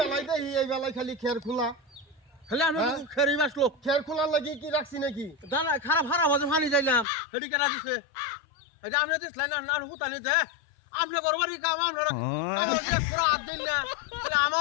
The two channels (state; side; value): drops out; right; at 7.1 s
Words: দেখি, এই বেলায় খালি খের খোলা। খালি আমরা খেরি বাসলো খের খোলার লাগিয়ে কি রাখছি নাকি? দানা খারাপ হারা বাজে পানি যাইলাম হেডি কেনা দিছে। এটা আমরা দিসলাই না না হুতানি দে, আমরা গরবারি কাম আমরা পুরো হাত দিন না, তাহলে